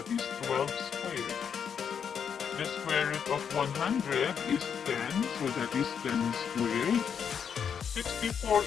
is 12 squared. The square root of 100 is 10, so that is 10 squared.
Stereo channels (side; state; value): right; quieter; 7.4 dB